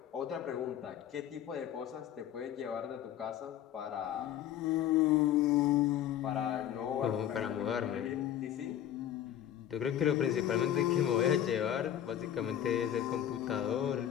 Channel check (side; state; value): right; quieter; 10.9 dB